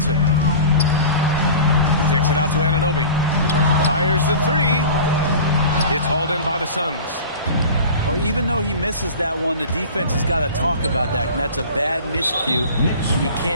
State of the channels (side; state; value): both; inverted; correlation -0.37